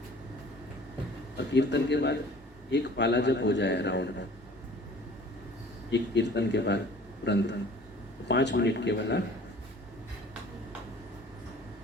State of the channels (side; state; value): both; normal; correlation 0.49